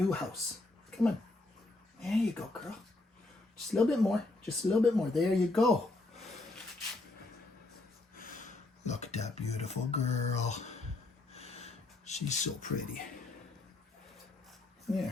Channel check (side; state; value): right; quieter; 3.0 dB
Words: house. Come on. There you go, girl. Just a little bit more. Just a little bit more. There you go. Look at that beautiful girl. She's so pretty.